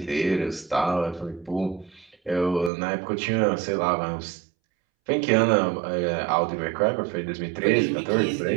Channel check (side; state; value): left; drops out; at 2.7 s